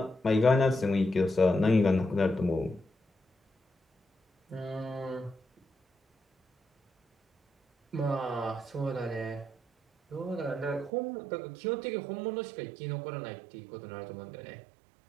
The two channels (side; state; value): left; drops out; at 10.9 s